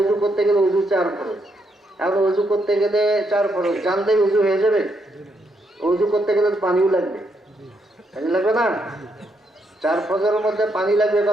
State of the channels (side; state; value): both; normal; correlation 0.77